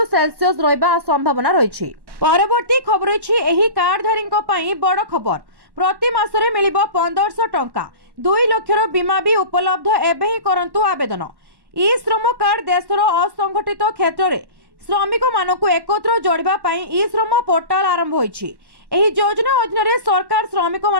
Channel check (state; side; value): late; left; 1.1 ms